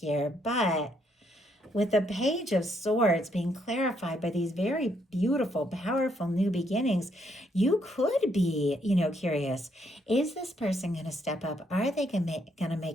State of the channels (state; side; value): normal; both; correlation 0.73